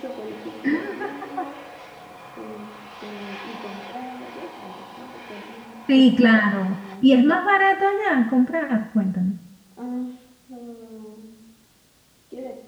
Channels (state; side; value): identical; both; correlation 1.00